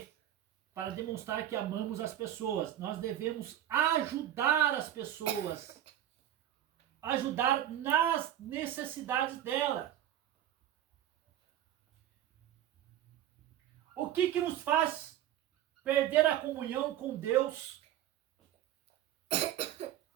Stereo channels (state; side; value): quieter; left; 11.9 dB